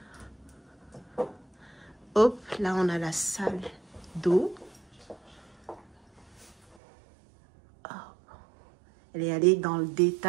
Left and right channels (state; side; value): drops out; left; at 6.8 s